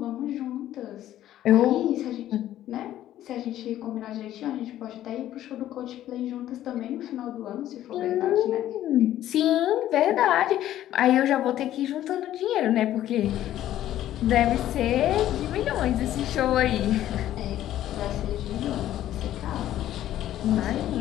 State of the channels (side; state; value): right; quieter; 12.7 dB